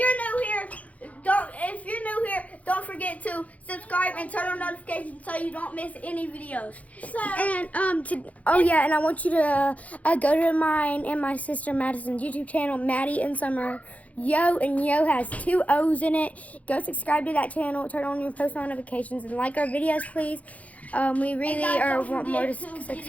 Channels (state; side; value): late; right; 0.069 ms